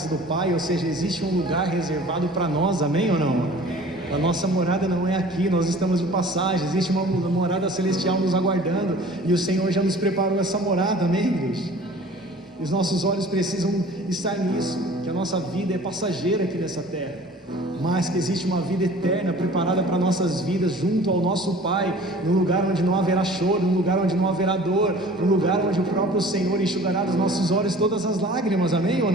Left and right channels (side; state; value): both; normal; correlation 0.46